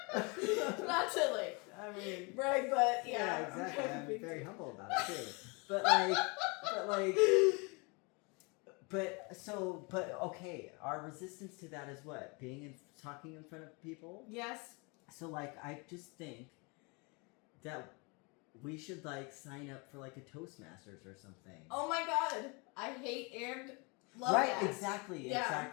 Not silly. I mean. Right, but yeah. Exactly. I'm very too. humble about it too. But okay, our resistance to that is what? Talking in front of people? Yes. So like, I just think that we should like sign up for like a Toastmasters or something. Oh my god. I hate and love right, that. exactly.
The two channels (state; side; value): quieter; right; 30.3 dB